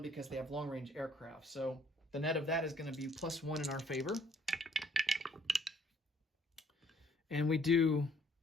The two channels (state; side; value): normal; both; correlation 0.61